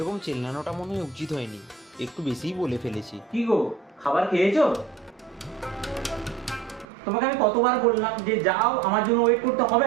চেল্লানোটা মনে হয় উচিত হয়নি, একটু বেশিই বলে ফেলেছি। কি গো, খাবার খেয়েছো? তোমাকে আমি কতবার বললাম যে যাও, আমার জন্য ওয়েট করতে হবে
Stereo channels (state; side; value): drops out; left; at 6.9 s